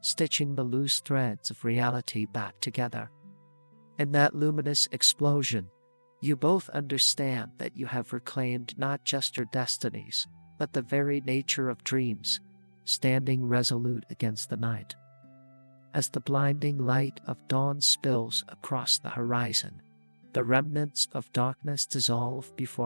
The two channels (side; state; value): both; inverted; correlation -1.00